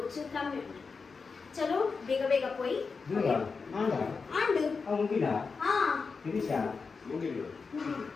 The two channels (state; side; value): quieter; right; 4.8 dB